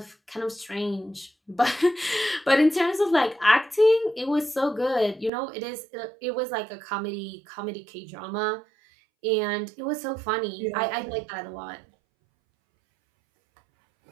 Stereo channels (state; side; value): drops out; left; at 5.3 s